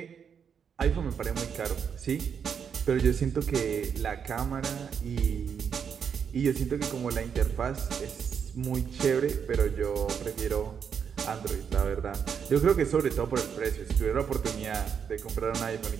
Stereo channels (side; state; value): left; quieter; 7.2 dB